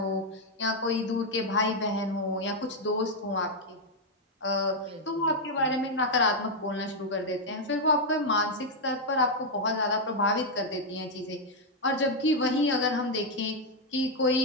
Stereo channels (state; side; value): normal; both; correlation 0.00